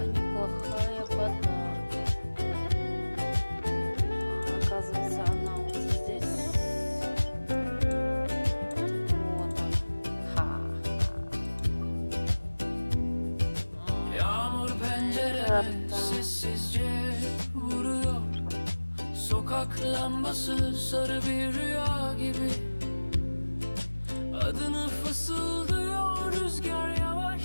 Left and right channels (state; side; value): inverted; both; correlation -1.00